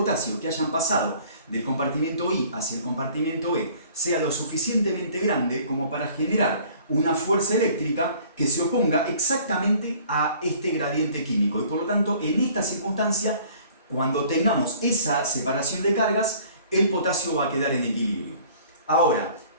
que hayan pasado del compartimento I hacia el compartimento E sea lo suficientemente grande como para generar una fuerza eléctrica que se oponga exactamente a este gradiente químico. Y por lo tanto, en esta circunstancia, cuando tengamos esa separación de cargas, el potasio va a quedar en equilibrio. Ahora,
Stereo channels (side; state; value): both; inverted; correlation -0.53